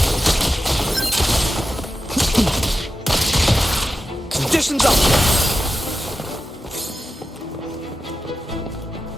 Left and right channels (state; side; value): normal; both; correlation 0.92